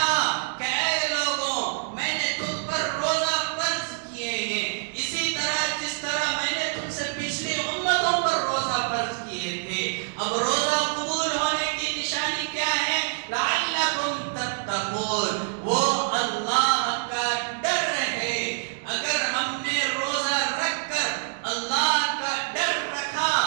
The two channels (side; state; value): left; silent; digital silence